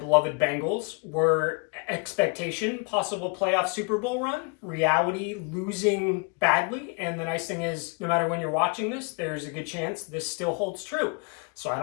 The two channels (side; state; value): right; quieter; 34.9 dB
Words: Bengals were expectation, possible playoff Super Bowl run, reality losing badly. And the nice thing is, no matter when you're watching this, there's a good chance this still holds true. So I